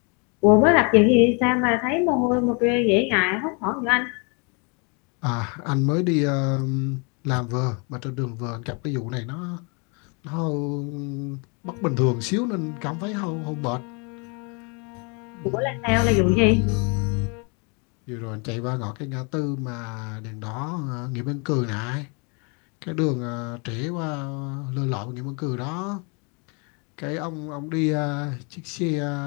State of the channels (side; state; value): right; quieter; 33.7 dB